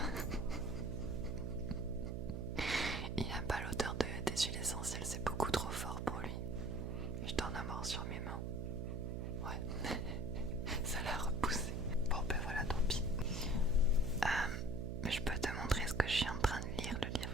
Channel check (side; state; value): right; noise; hum, 2 dB below the sound